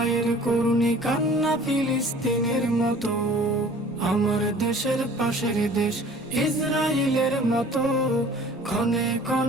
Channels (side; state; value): both; normal; correlation 0.48